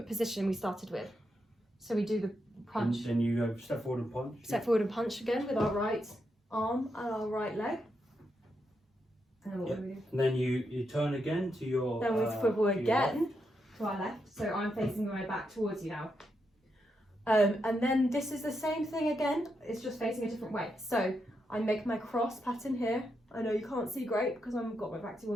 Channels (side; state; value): both; normal; correlation 0.83